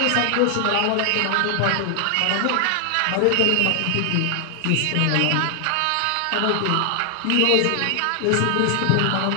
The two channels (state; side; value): different; both; correlation 0.00